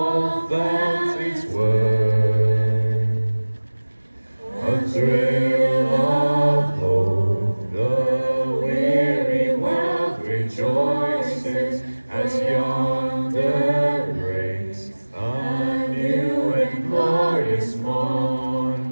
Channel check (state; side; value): inverted; both; correlation -1.00